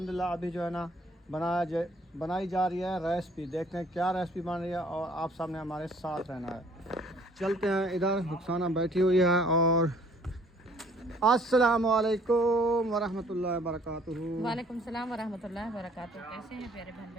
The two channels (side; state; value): both; normal; correlation 0.58